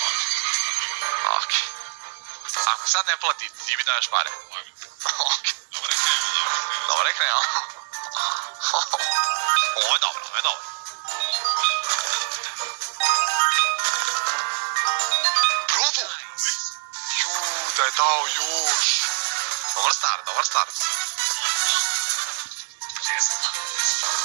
Okej. Ako sad ne plati, ti mi daješ pare. Okej. Dobro je krenuo. Ovo je dobro. Bravo! Da je dao još. Dobar start.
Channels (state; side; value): silent; left; 62 dB below the other